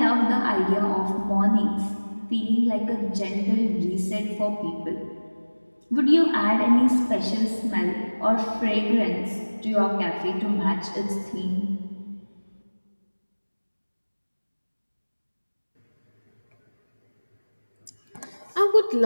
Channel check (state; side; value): inverted; both; correlation -1.00